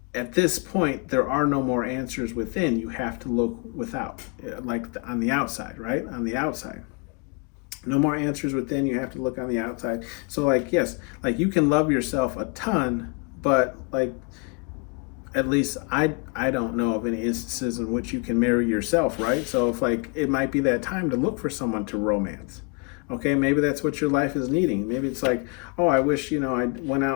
at this point, there are no more answers within. You have to look without, like on the outside, right? On the outside. No more answers within. You have to look on the outside. So like, yes, like you can love yourself a ton, but like, at least I don't know of any instances in which you can marry yourself, right? So if like, it might be that time to look for someone to romance. Okay, maybe that's what your life is needing. Maybe it's like, oh, I wish, I went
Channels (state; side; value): quieter; right; 33.3 dB